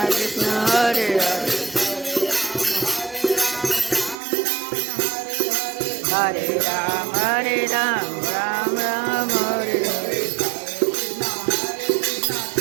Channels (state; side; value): drops out; left; at 4.2 s